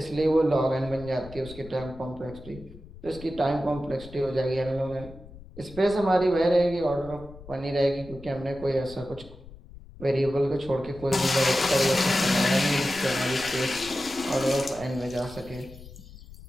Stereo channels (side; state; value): left; noise; rumble, 18 dB below the sound